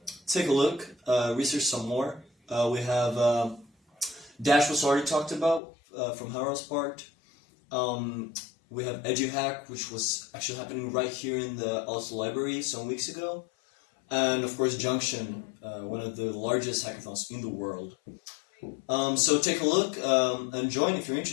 take a look, research some more. We have Dash was already talked about from Harald's part. We have EduHack, which was actually happening right here in the Oslo library some weeks ago. And of course Junction, one of the largest hackathons in the world. So take a look and join if you're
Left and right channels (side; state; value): right; drops out; at 5.6 s